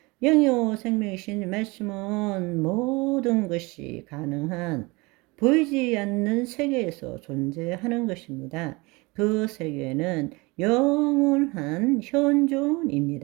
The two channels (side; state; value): left; quieter; 25.0 dB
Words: 영요 생명이신 말씀은 모든 것이 가능한 보이지 않는 세계에서 존재하는 것입니다. 그 세계는 영원한